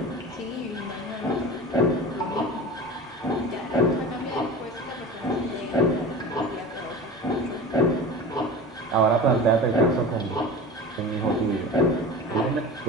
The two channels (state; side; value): normal; both; correlation 0.34